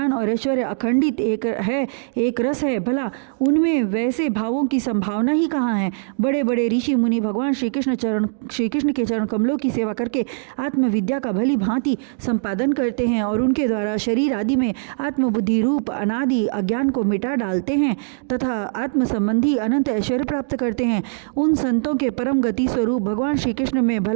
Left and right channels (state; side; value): silent; left; digital silence